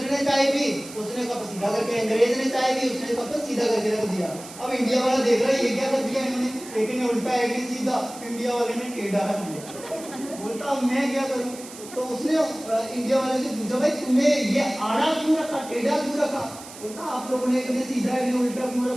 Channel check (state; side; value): noise; right; hiss, 15 dB below the sound